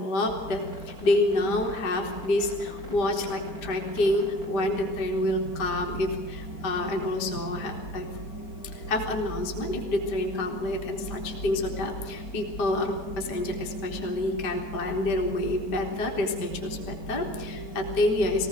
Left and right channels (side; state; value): right; late; 5.0 ms